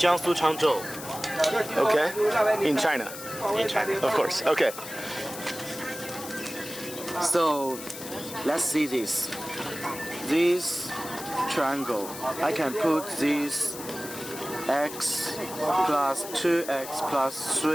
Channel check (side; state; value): left; noise; hiss, 11 dB below the sound